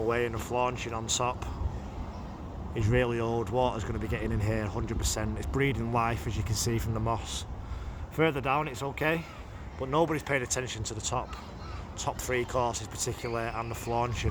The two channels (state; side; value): identical; both; correlation 1.00